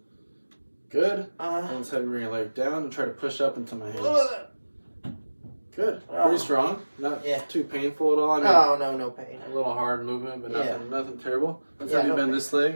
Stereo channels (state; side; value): inverted; both; correlation -1.00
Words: Good. And let's have you bring your leg down and try to push up into my hand. Good. Pretty strong. Not too painful at all. I mean, no pain. A little hard movement, but nothing terrible. Let's have you bend this